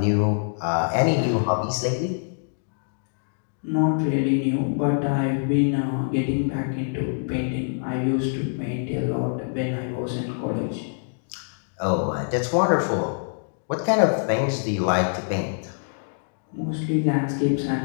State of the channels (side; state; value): right; silent; digital silence